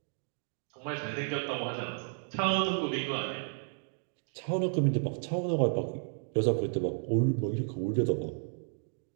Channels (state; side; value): silent; left; 56 dB below the other